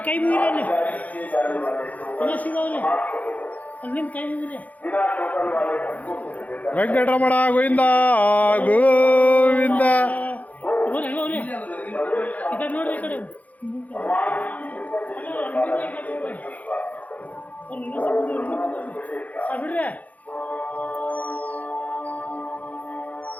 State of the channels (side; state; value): right; late; 0.076 ms